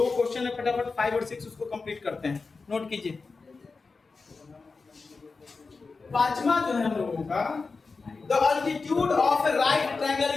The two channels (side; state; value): right; quieter; 4.3 dB